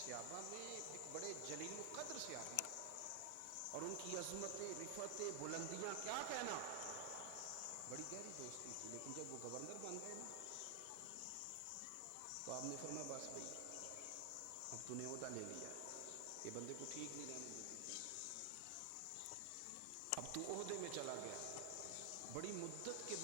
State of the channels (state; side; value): different; both; correlation 0.00